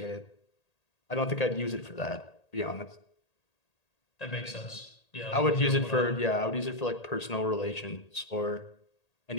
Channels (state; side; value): late; right; 1.8 ms